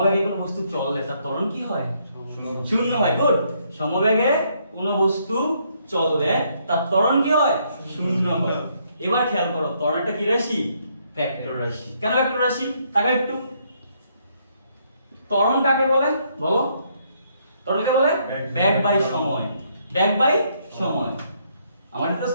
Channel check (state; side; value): inverted; both; correlation -0.71